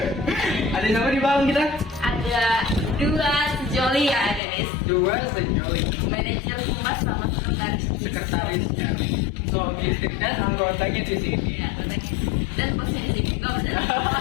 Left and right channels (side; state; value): right; drops out; at 4.4 s